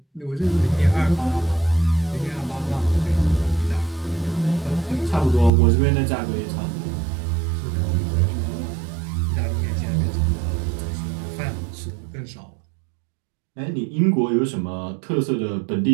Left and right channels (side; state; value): left; drops out; at 5.5 s